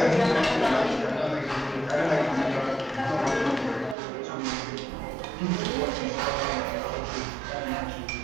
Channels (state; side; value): drops out; left; at 4.0 s